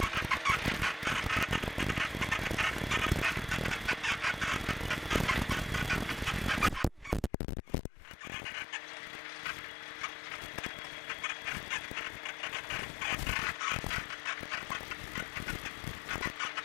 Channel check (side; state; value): right; drops out; at 7.3 s